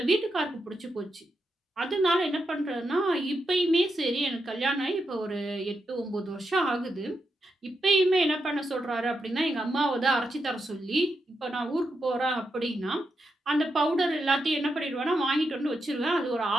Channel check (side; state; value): both; normal; correlation 0.85